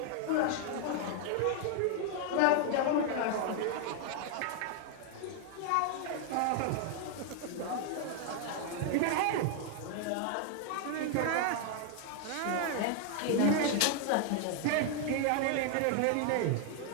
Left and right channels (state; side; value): different; both; correlation 0.00